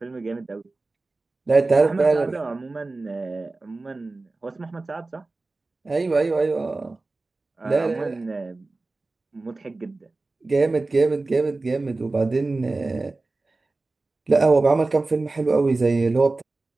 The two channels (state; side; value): quieter; left; 3.3 dB